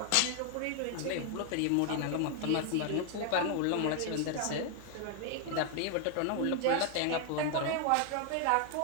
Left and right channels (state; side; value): different; both; correlation 0.00